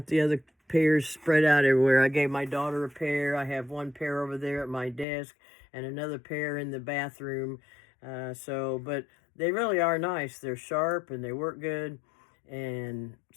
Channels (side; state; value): right; drops out; at 5.1 s